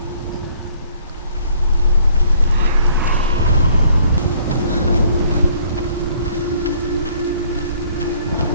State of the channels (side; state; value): both; inverted; correlation -0.59